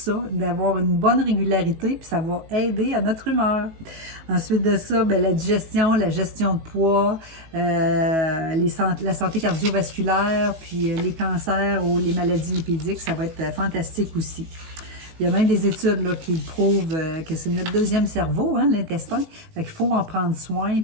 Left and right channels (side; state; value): left; late; 19 ms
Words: d'avoir une bonne régularité, puis ça va aider à notre humeur. Ensuite de ça, bien, la digestion, la gestion de poids, la santé cardiovasculaire, puis les cancers ou les maladies lipidiques, ça va être fantastique aussi. Il y a même des études là, qui prouvent que c'est notre deuxième cerveau, hein, l'intestin. Fait qu'il faut en prendre soin.